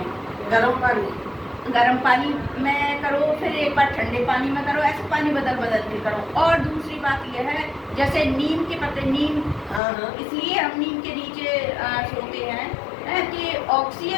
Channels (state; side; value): drops out; right; at 9.8 s